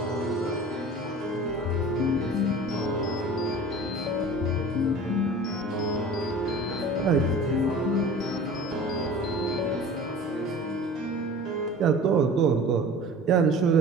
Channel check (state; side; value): normal; both; correlation 0.41